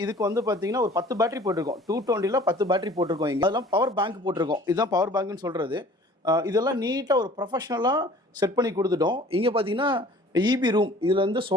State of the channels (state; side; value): normal; both; correlation 0.49